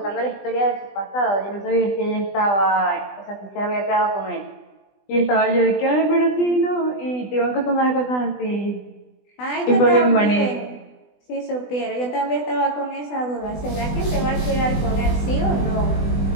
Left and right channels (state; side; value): late; right; 20 ms